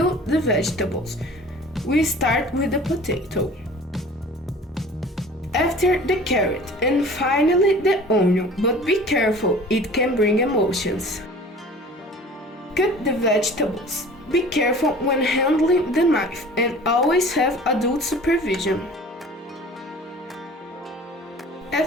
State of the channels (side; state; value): both; normal; correlation 0.44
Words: the vegetables. We start with the potato. After the carrot and finally the onion, but be careful, it can bring emotions. Cut the vegetables. Be careful when handling the knife and always have adult supervision.